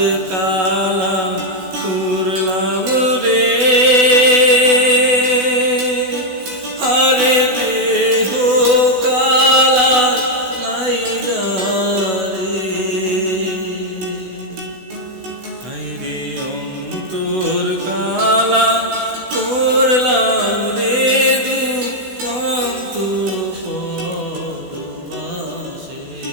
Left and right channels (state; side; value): late; left; 16 ms